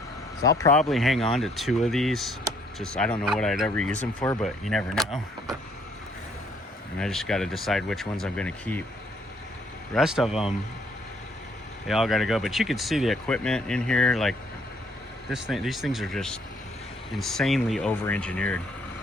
So I'll probably hang on to 2 of these. Just, I don't know what I'd ever use them for, but you never know. And I just got to decide which ones I'm going to keep. The rest of them, they all got to go. But you can see the equipment in here. Like this thing, these things are just insanely over-engineered.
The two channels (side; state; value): both; normal; correlation 0.66